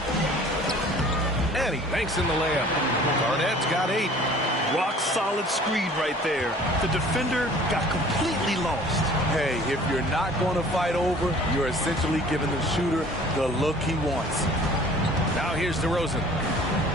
And he banks in the layup. Garnett's got 8. Rock solid screen right there. The defender got completely lost. Hey, if you're not going to fight over, you're essentially giving the shooter the look he wants. Now here's DeRozan.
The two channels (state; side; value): normal; both; correlation 0.49